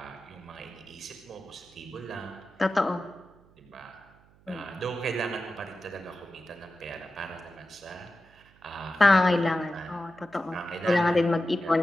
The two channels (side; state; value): right; noise; hum, 28 dB below the sound